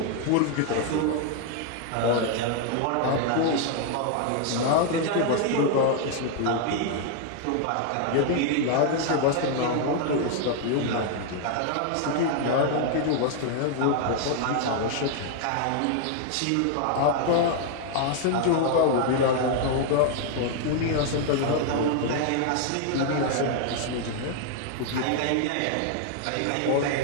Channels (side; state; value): both; different; correlation 0.00